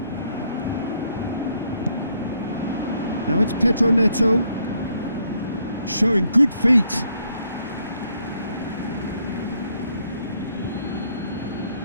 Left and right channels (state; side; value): inverted; both; correlation -0.71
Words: Now it's Pedro Neto. Showing good feet.